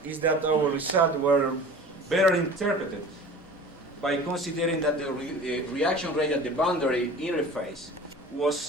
is that our results were better interpreted by considering that the reaction rate at the boundary interface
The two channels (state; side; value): normal; both; correlation 0.40